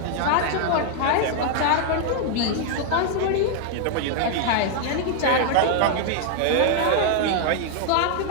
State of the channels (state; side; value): different; both; correlation 0.00